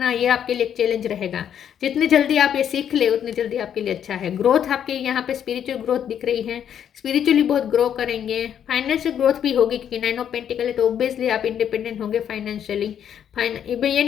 ये आपके लिए एक चैलेंज रहेगा. जितनी जल्दी आप ये सीख ले उतनी जल्दी आपके लिए अच्छा है. ग्रोथ आपके यहाँ पे स्पिरिचुअल ग्रोथ दिख रही है. स्पिरिचुअली बहुत ग्रो करेंगे. फाइनेंशियल ग्रोथ भी होगी, क्योंकि 9 ऑफ पेंटिकल है, तो ऑब्वियसली आप इंडिपेंडेंट होंगे फाइनेंशियली. ये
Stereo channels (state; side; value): quieter; right; 9.2 dB